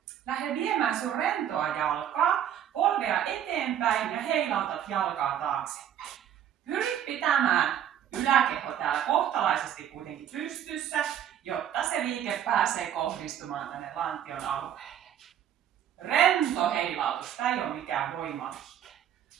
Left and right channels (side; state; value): left; quieter; 10.1 dB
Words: lähde viemään sun rentoa jalkaa, polvea eteenpäin ja heilautat jalkaa taaksepäin. Pyri pitämään yläkeho täällä kohtalaisesti kuitenkin pystyssä, jotta se liike pääsee kohdistumaan tänne lantion alueelle. Rento heilautus, tämä ei ole mikään voimaliike.